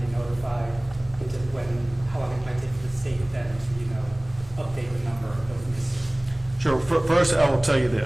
notified, into how long it might take for the state then to update the number of those missing? Sure. First, I will tell you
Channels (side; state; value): right; noise; hum, 22 dB below the sound